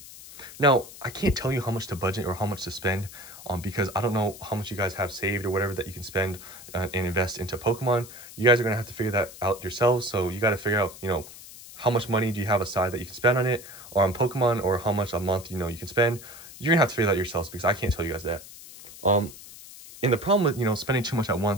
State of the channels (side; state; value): left; noise; hiss, 16 dB below the sound